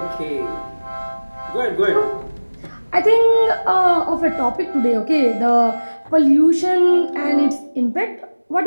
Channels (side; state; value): both; inverted; correlation -1.00